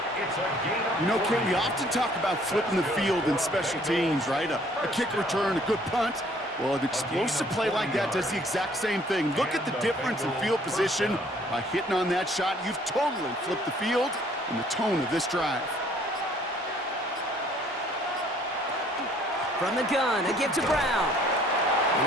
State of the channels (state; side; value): normal; both; correlation 0.59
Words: You know, Ken, we often talk about flipping the field in special teams, right? A kick return, a good punt. Well, an explosive play like that does the exact same thing. Look at the difference in field position. By hitting on that shot, you've totally flipped the field and the tone of this drive. From the gun, a give to Brown.